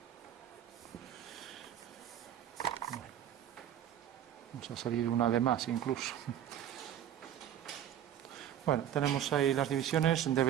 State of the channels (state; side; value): quieter; left; 10.6 dB